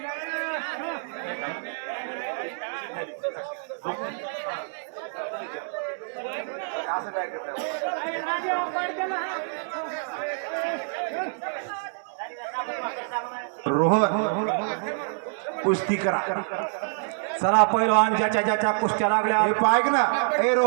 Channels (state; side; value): silent; left; 59 dB below the other